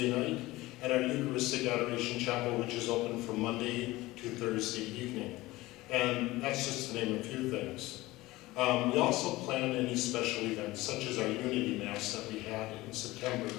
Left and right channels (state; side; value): quieter; right; 19.1 dB